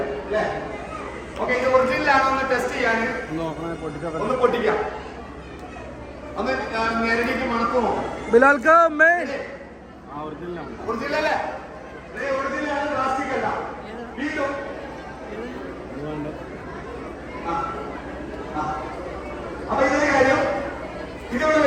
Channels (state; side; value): identical; both; correlation 1.00